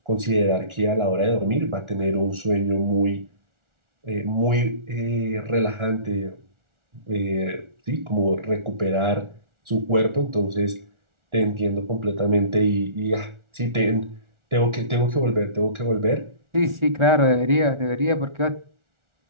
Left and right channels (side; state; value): left; late; 1.4 ms